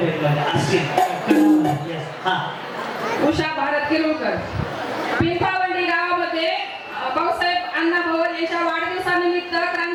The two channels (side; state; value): both; identical; correlation 1.00